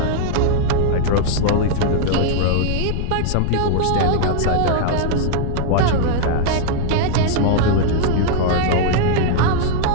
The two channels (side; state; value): both; different; correlation 0.00